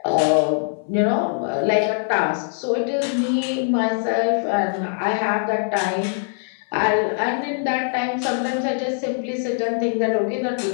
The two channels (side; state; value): right; silent; digital silence